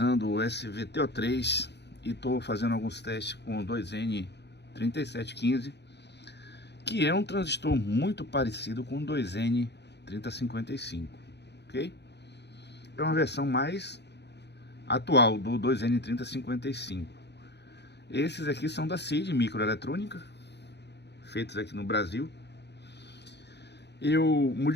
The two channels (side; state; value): right; late; 0.50 ms